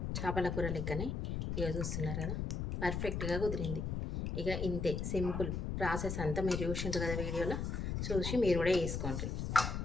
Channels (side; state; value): left; noise; rumble, 2 dB below the sound